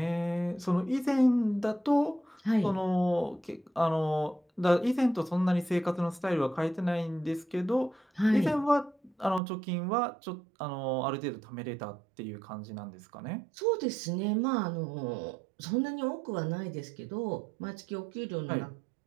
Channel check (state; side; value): drops out; left; at 9.4 s